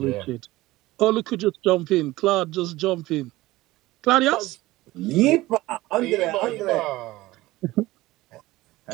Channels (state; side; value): quieter; left; 18.3 dB